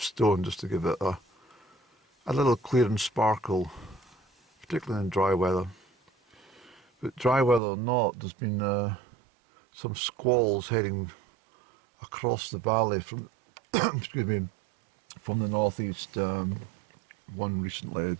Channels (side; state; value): left; drops out; at 7.6 s